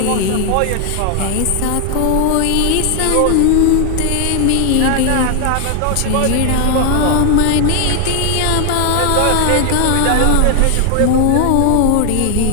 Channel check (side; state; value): both; different; correlation 0.00